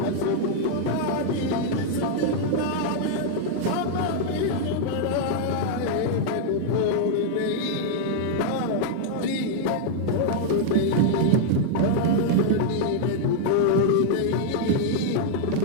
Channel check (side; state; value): both; different; correlation -0.01